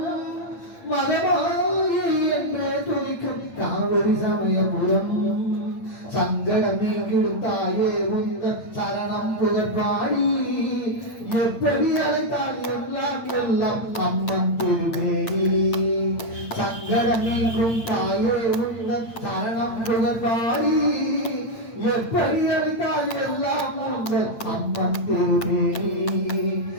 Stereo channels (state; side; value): late; right; 8.8 ms